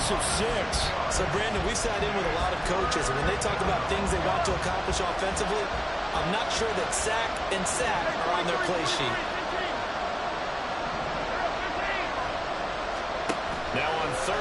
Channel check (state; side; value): identical; both; correlation 1.00